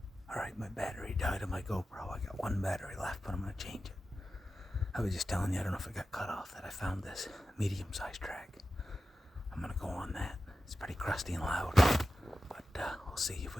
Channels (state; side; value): normal; both; correlation 0.93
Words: Alright, my battery died on my GoPro. I got one battery left, but I'm gonna change it. I was just telling you, I don't know if it got cut off, that I found this medium-sized track. I'm gonna go on that. It's pretty crusty and loud, but we'll see if